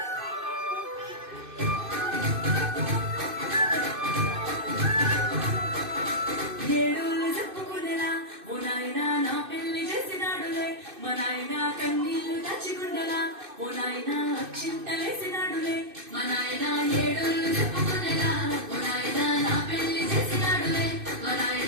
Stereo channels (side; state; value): left; late; 2.6 ms